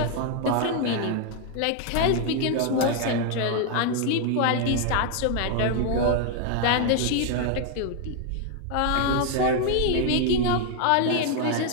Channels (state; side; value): different; both; correlation 0.00